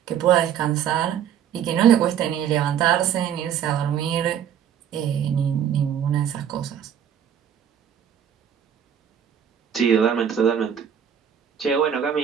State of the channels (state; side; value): quieter; left; 9.0 dB